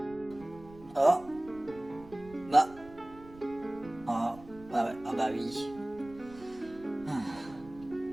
Oh. Bah. Oh. Ah, ouais. Ah bah oui.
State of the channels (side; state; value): right; noise; rumble, 20 dB below the sound